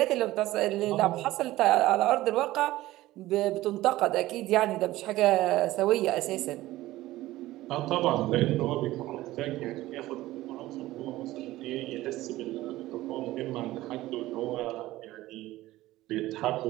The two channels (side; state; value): left; quieter; 16.7 dB